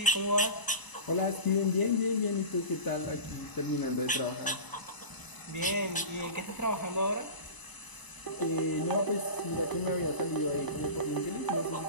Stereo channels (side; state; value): right; late; 1.0 ms